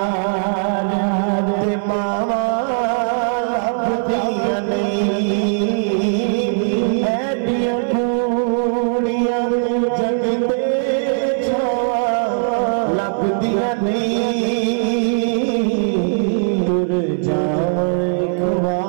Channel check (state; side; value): silent; left; 67 dB below the other